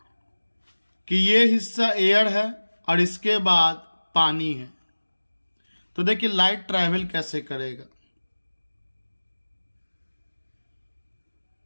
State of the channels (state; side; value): inverted; both; correlation -1.00